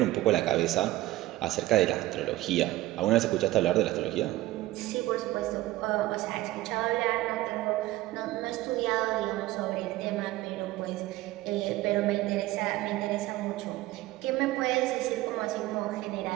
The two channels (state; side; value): quieter; left; 17.1 dB